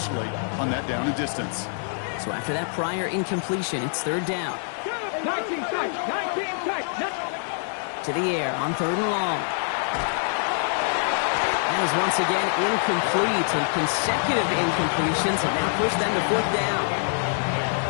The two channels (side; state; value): right; silent; digital silence